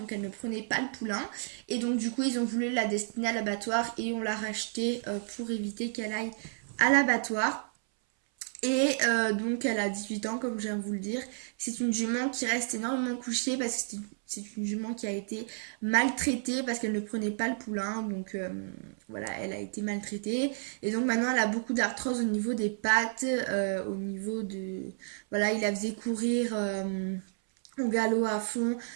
elle ne prenait pas le poulain. Et donc du coup ils ont voulu la destiner à l'abattoir et on l'a rachetée pour éviter qu'elle aille à l'abattoir. Et donc elle a 18 ans comme je viens de vous le dire. C'est une jument qui reste énormément couchée parce que c'est une jument qui a été maltraitée parce qu'elle ne prenait pas le poulain. Donc voilà, elle a été maltraitée. Et donc maintenant elle a beaucoup d'arthrose au niveau des pattes, au niveau de... Voilà, il la faisait courir au galop à fond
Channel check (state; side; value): silent; left; 57 dB below the other